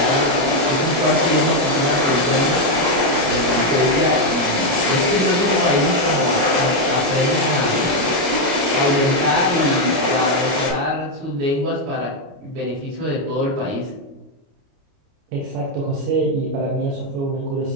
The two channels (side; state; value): left; late; 29 ms